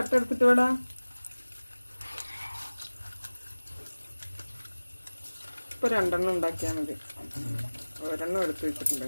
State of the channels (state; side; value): inverted; both; correlation -1.00